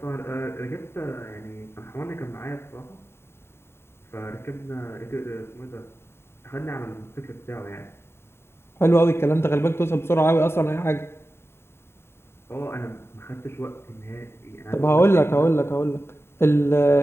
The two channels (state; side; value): late; right; 0.12 ms